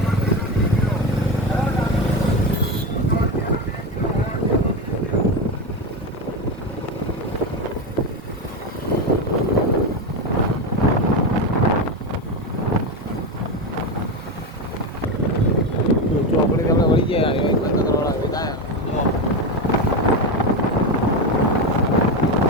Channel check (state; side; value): normal; both; correlation 0.16